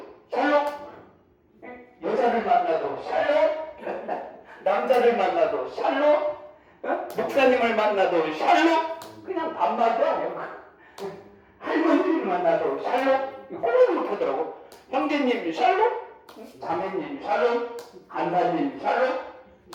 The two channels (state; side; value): identical; both; correlation 1.00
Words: 샬롬. 여자를 만나도 샬롬. 남자를 만나도 샬롬. 목사님을 만나도 샬롬. 그냥 반말도 안 해요. 할머니를 만나도 샬롬. 꼭 이렇게 하더라고. 형제님 샬롬. 자매님 샬롬. 간사님 샬롬.